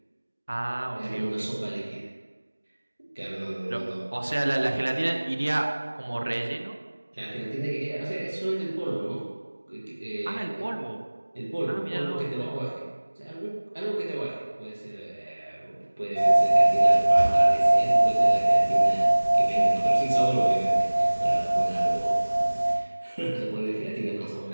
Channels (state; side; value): inverted; both; correlation -1.00